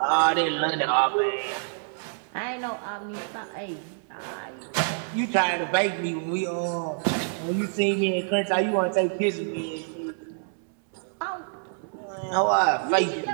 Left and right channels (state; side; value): silent; left; digital silence